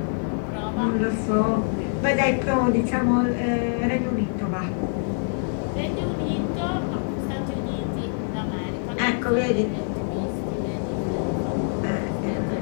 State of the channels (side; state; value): right; silent; 62 dB below the other